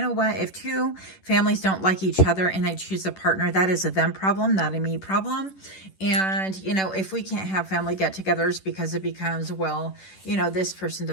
what? If 2 families don't like each other and I choose a partner, that is a them problem, not a me problem. And, if we can't have family get-togethers because it becomes, well, this person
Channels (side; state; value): right; late; 10 ms